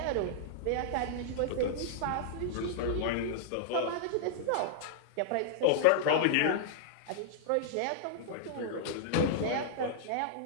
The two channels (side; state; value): both; different; correlation -0.01